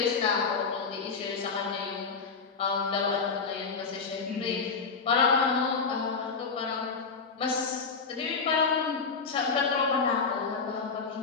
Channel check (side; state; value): right; quieter; 5.0 dB